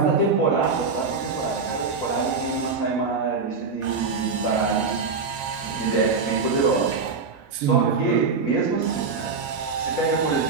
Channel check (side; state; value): left; quieter; 4.7 dB